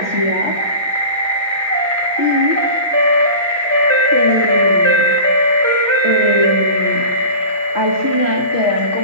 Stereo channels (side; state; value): both; inverted; correlation -0.35